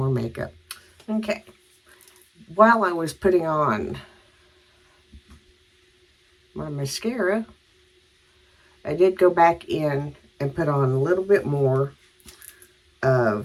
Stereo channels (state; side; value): identical; both; correlation 1.00